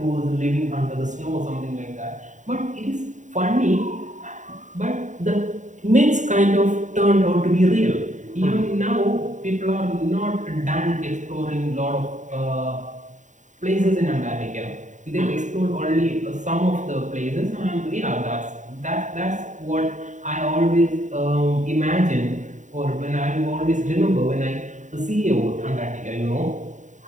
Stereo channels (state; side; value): late; left; 0.36 ms